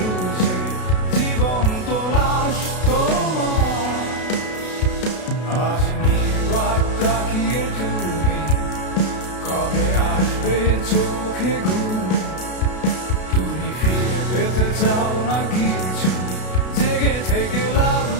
জীবন্ত লাশ তোমার। আজ নির্বাক তাকিয়ে তুমি, কবে আসবে চোখে ঘুম? তুমি ফিরে পেতে চাও না কিছু, জেগে থেকে লাভ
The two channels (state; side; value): late; right; 32 ms